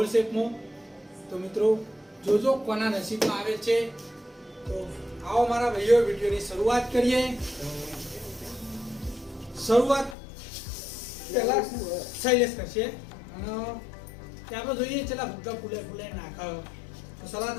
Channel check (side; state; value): right; drops out; at 10.2 s